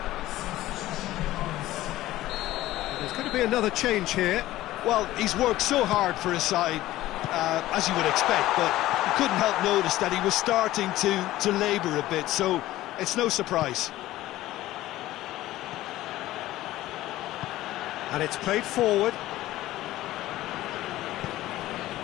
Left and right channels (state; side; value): quieter; right; 15.7 dB